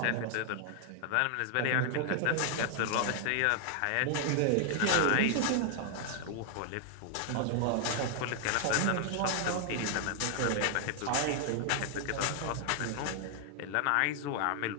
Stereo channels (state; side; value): different; both; correlation 0.00